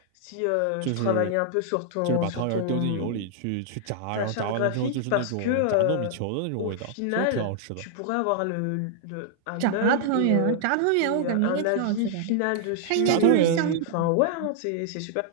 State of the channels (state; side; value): different; both; correlation -0.01